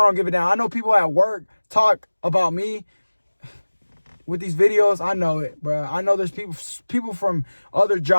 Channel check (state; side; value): inverted; both; correlation -1.00